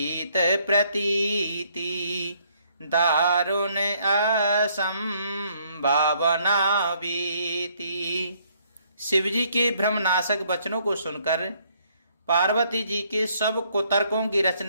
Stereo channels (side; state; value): both; inverted; correlation -0.67